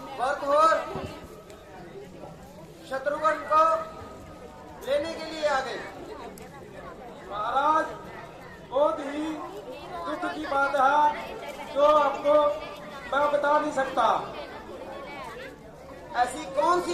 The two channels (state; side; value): identical; both; correlation 1.00